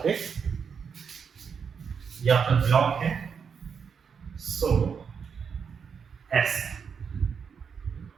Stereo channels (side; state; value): left; quieter; 6.5 dB